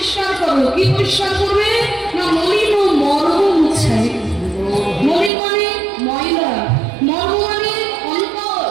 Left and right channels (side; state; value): left; drops out; at 5.3 s